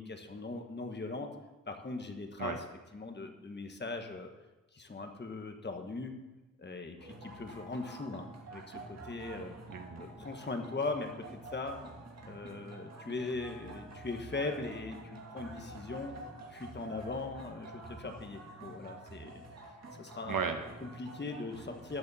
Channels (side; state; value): both; normal; correlation 0.31